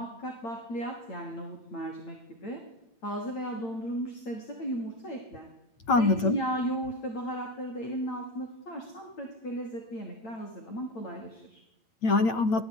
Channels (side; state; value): right; late; 8.9 ms